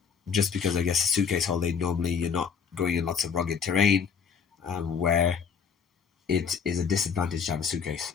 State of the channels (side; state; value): right; quieter; 6.4 dB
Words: Just because I guess a suitcase holiday, normally you're not going in lots of rugged terrain where it is a disadvantage to have a suitcase.